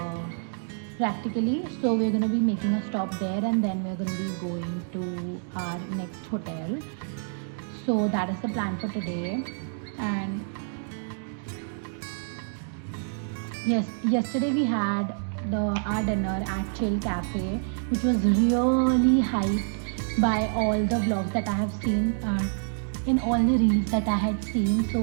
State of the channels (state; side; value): silent; left; digital silence